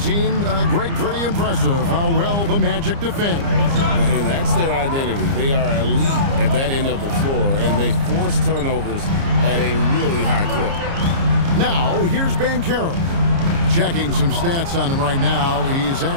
Greg, pretty impressive how well the Magic defend. And that's their identity. They are elite at that end of the floor, and they force turnovers at a really high clip. Now, here's Banchero. Checking some stats on him right now. He's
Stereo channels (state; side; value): late; left; 30 ms